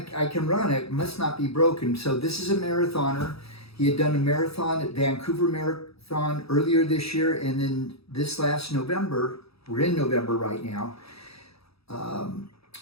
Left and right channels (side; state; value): right; late; 0.77 ms